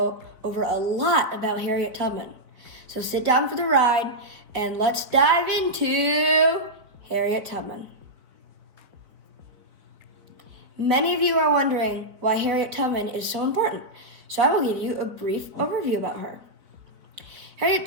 over a lot about Harriet Tubman. So sit down for the ride and let's dive into Harriet Tubman. Many of you are wondering why Harriet Tubman is so important, so I will give you a brief overview about her. Harriet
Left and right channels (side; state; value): left; late; 4.1 ms